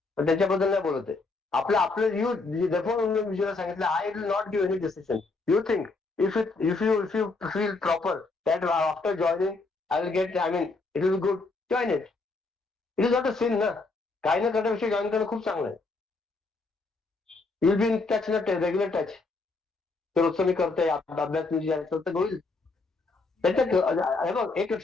पण त्याच्याबद्दल नाही बोलत आहे. आपलं आपलं यू विजयला सांगितलं I will not give any decision. You think if you feel proper that after joining I will get, I mean it will be good, join it. It is not a sin ना. काही न करण्यापेक्षा join करणं खूप चांगलं आहे. You will be in touch ना, regular touch. रोजचं मी करतोय अभ्यास तर होईल. त्याच्यात हे बघ एक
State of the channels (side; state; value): right; quieter; 3.7 dB